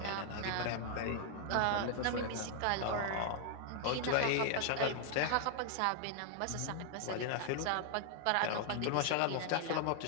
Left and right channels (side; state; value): both; different; correlation 0.00